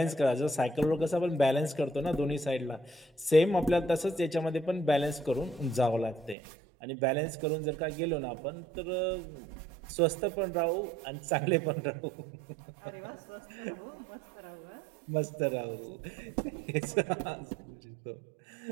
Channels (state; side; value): drops out; left; at 6.4 s